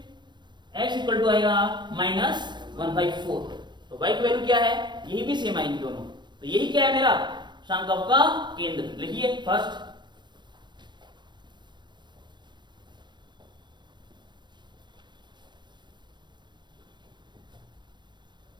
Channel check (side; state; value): left; late; 0.22 ms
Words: x इक्वल टू आएगा माइनस 1/4, तो y की वैल्यू क्या है, यही भी सेम आएगी दोनों, तो यही क्या है मेरा संकल्प का केंद्र, लिखिए फर्स्ट,